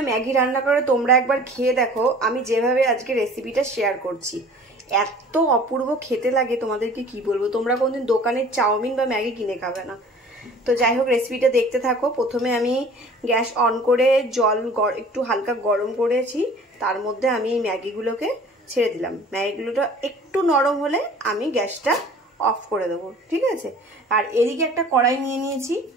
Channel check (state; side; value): normal; both; correlation 0.47